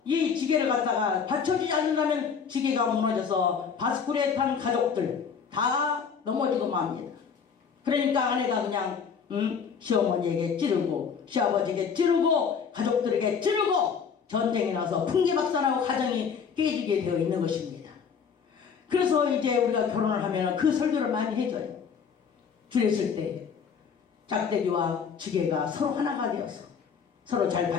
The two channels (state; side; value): quieter; right; 6.5 dB